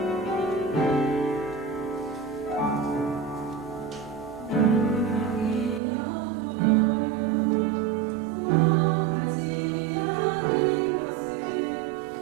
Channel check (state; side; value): drops out; left; at 5.8 s